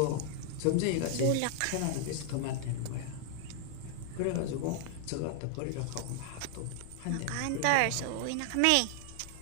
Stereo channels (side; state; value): both; different; correlation 0.00